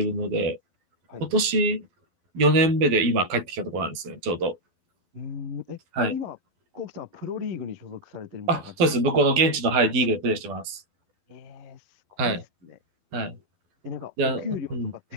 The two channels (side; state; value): left; late; 11 ms